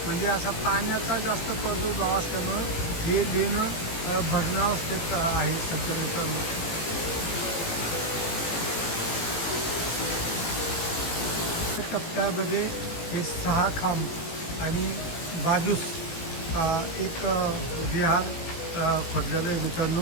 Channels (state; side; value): late; right; 18 ms